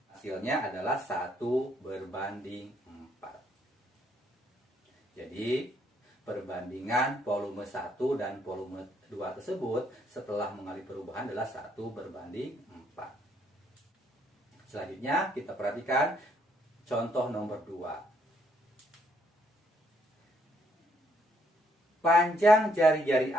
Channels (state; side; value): normal; both; correlation 0.71